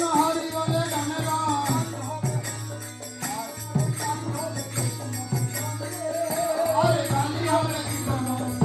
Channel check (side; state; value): both; identical; correlation 1.00